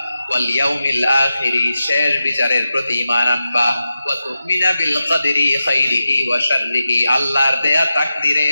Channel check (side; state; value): both; inverted; correlation -0.91